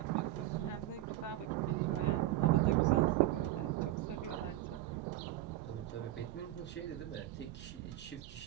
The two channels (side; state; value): left; quieter; 14.9 dB